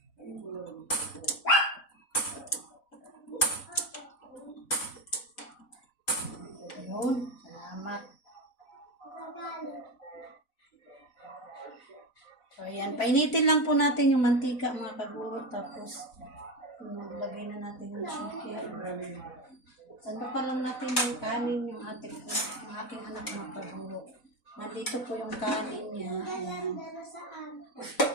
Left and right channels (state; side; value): late; right; 4.0 ms